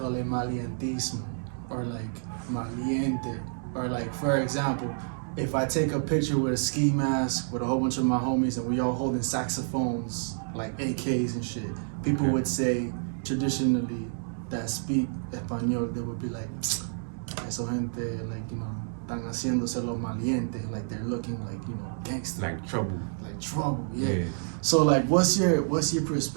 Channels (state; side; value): silent; left; digital silence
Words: it malientismo, or like maliente, or like, for example, if I take a picture with a ski mask with a whole bunch of my homies and we all holding saxophones, like AKs and shit, people would say traditionally that speak español, they would be like, eso gente, like, you know, están haciéndose los malientes, like they're looking like, you know, gangster. Like trouble. Like trouble, yeah. So like, what's your